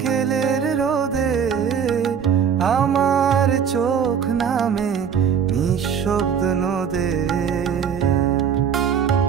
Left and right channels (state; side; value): quieter; left; 7.5 dB